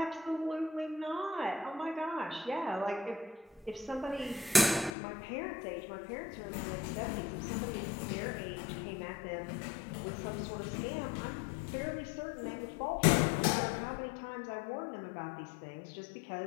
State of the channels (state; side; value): drops out; right; at 4.9 s